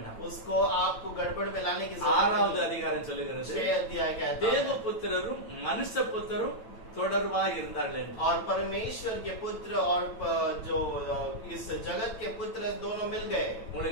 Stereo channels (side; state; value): right; late; 9.0 ms